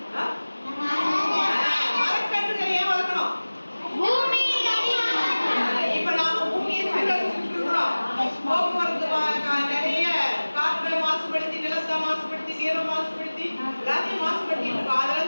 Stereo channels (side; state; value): both; inverted; correlation -1.00